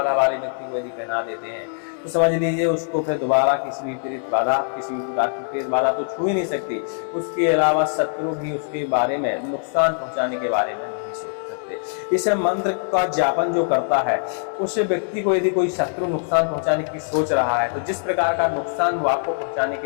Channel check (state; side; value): silent; right; digital silence